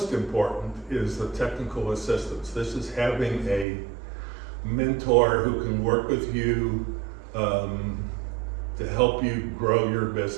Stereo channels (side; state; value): left; drops out; at 3.7 s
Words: important is the technical assistance. This is having a mentor who can work with you to help you grow your